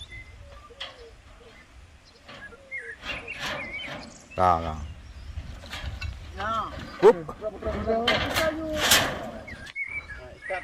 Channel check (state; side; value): identical; both; correlation 1.00